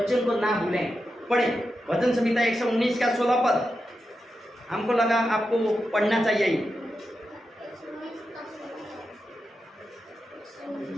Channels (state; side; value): normal; both; correlation 0.89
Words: को ना भूलें, पढ़े वचन संहिता 119 का 16 पद, हमको लगा आपको पढ़ना चाहिए।